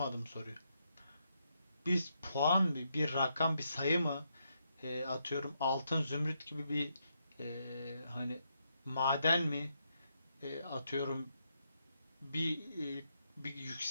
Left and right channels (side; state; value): both; inverted; correlation -0.80